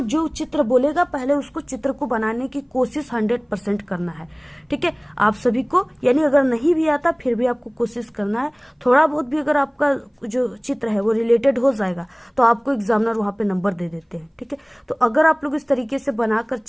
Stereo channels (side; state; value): both; identical; correlation 1.00